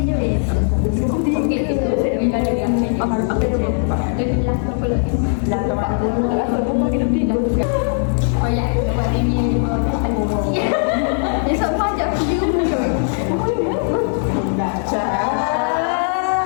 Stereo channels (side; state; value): right; silent; 60 dB below the other